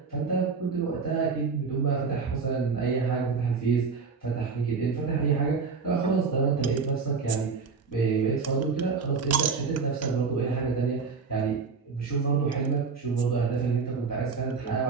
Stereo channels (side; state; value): left; quieter; 5.0 dB